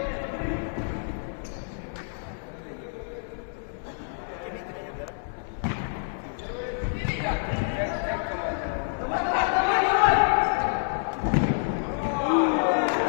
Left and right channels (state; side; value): silent; right; digital silence